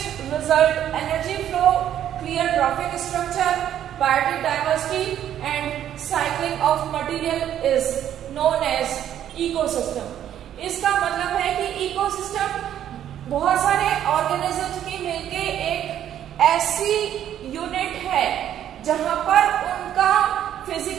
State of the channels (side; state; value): left; quieter; 10.7 dB